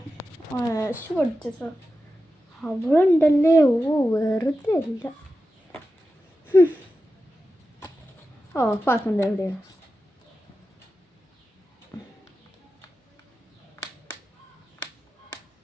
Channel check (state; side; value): normal; both; correlation 0.91